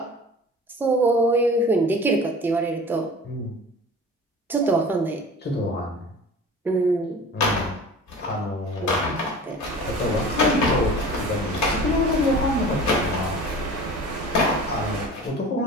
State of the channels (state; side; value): normal; both; correlation 0.40